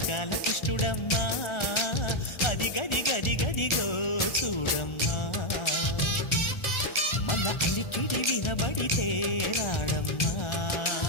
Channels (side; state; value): right; late; 1.4 ms